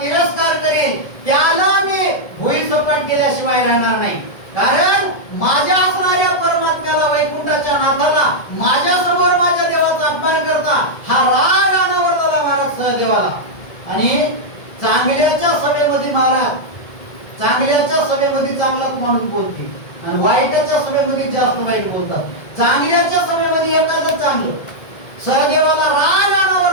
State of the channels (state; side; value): late; right; 1.7 ms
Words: तिरस्कार करेल त्याला मी भुई सपाट केल्याशिवाय राहणार नाही कारण माझ्या असणाऱ्या परमात्म्याला वैकुंठाच्या नाथाला माझ्या समोर माझ्या देवाचा अपमान करता हा राग अनावर झाला महाराज सहदेवाला आणि चांगल्याच्या सभेमध्ये महाराज चांगल्याच्या सभेमध्ये चांगलाच माणूस बोलते आणि वाईटाच्या सभेमध्ये जास्त वाईट बोलतात चांगल्याच्या सभेमध्ये एखादं चांगलं सहदेवाला राग अनावर